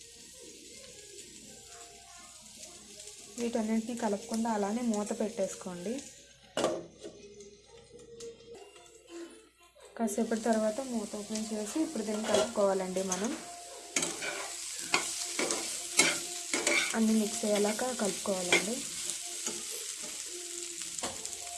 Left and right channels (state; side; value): identical; both; correlation 1.00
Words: వీటన్నింటినీ కలుపుకుండా అలానే మూత పెట్టేసుకోండి. కాసేపటి తర్వాత మూత ఓపెన్ చేసి ఇప్పుడు దీన్ని కలుపుకోవాలండి. మనం అన్నీ మిక్స్ అయ్యేలాగా కలుపుకోవాలండి.